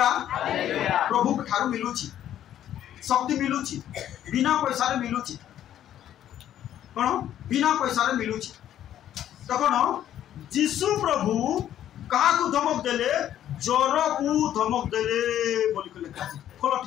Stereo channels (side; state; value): right; quieter; 11.3 dB